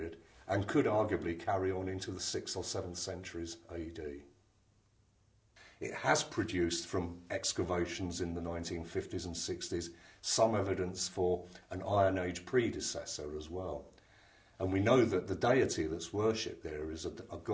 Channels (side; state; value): both; identical; correlation 1.00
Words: and could arguably carry on into the 6th or 7th centuries AD. It has produced, from excavations in the 1950s and 60s, some evidence for an Iron Age predecessor as well. And we know that the deity that's worshipped there is a